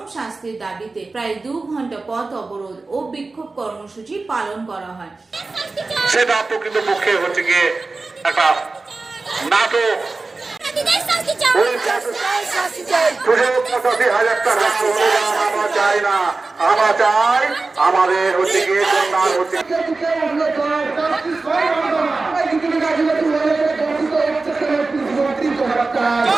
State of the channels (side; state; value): left; quieter; 3.7 dB